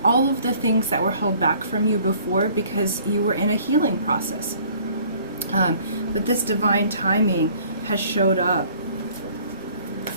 all of the things that were held back from you before because you were in a healing process. But this divine timing has showed up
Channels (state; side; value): inverted; both; correlation -0.56